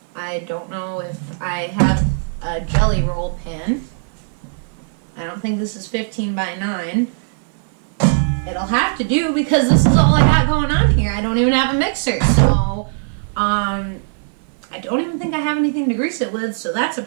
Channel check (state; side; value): silent; left; 56 dB below the other